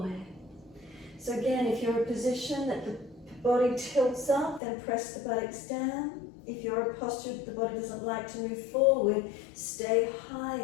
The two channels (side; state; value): right; drops out; at 4.6 s